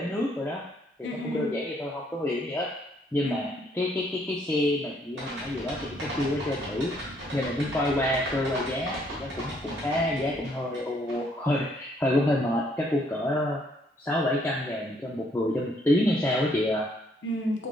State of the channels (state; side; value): normal; both; correlation 0.68